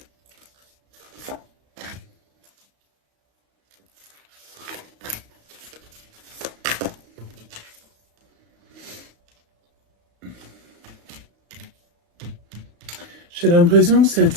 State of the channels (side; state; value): left; late; 35 ms